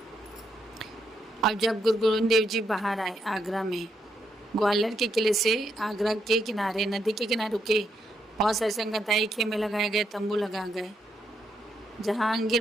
अब जब गुरु गोविंद देव जी बाहर आए आगरा में, ग्वालियर के किले से आगरा के किनारे, नदी के किनारे रुके। बहुत सारे संगताई खेमे लगाए गए, तंबू लगा गए। जहांगीर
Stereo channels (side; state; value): both; normal; correlation 0.79